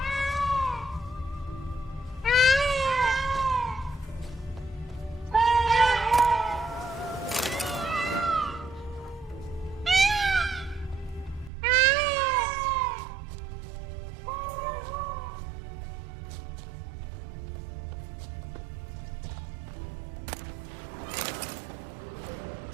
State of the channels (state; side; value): drops out; left; at 11.5 s